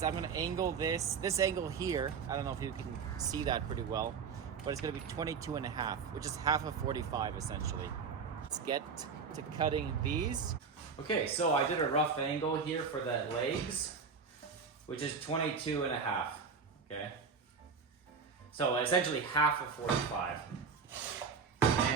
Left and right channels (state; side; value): quieter; left; 5.7 dB